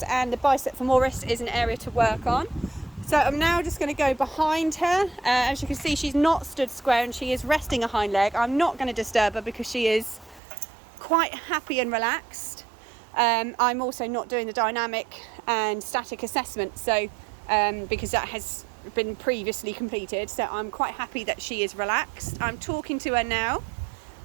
and the bicep femoris is an area to work on. So I'm now just going to go behind her. As you can see, she's not stood square and she is resting a hind leg. I'm not going to disturb her because she is quite happy and relaxed. I'm also not doing the dynamic and static assessment, so because that has been previously completed, so I'm quite happy that she is relaxed. I'm talking to her now.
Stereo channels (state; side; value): drops out; left; at 10.4 s